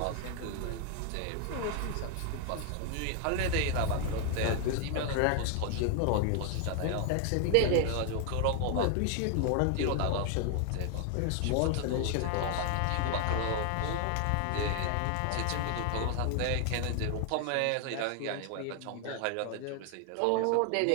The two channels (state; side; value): different; both; correlation 0.00